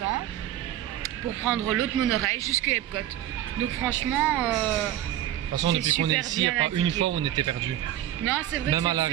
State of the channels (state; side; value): quieter; left; 12.4 dB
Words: pour prendre l'autre monorail jusqu'à Epcot. Donc franchement, de toute façon depuis qu'on est ici, il n'y a pas une fois où on était perdu. Non, c'est vrai, même